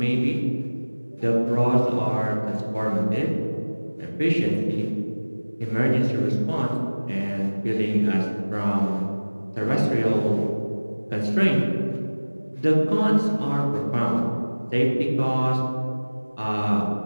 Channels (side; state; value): both; inverted; correlation -1.00